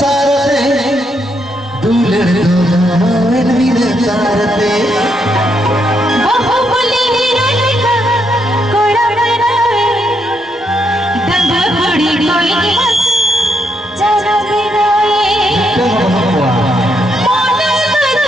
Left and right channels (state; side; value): normal; both; correlation 0.78